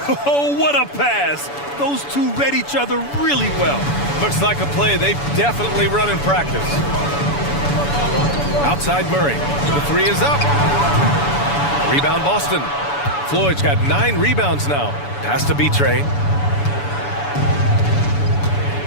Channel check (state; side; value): late; right; 7.0 ms